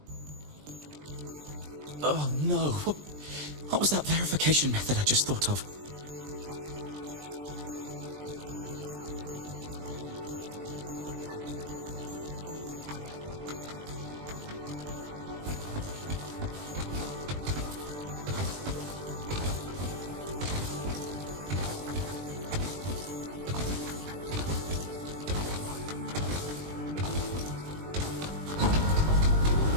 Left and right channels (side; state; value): left; late; 20 ms